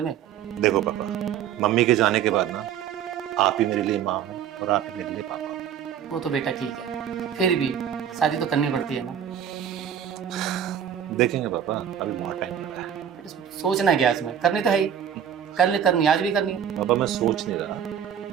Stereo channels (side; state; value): left; quieter; 9.0 dB